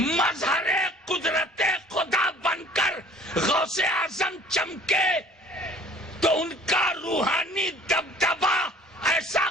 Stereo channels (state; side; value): normal; both; correlation 0.52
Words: قدرت خدا بن کر غوث اعظم چمکے تو ان کا روحانی دبدبا ایسا